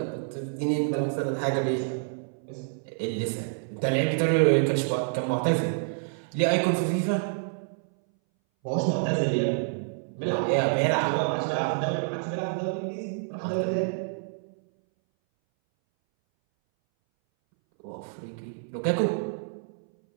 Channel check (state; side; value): silent; left; 60 dB below the other